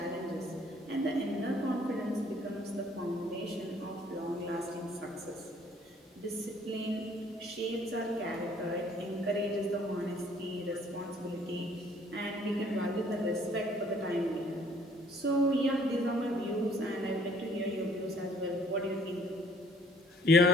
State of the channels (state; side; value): normal; both; correlation 0.59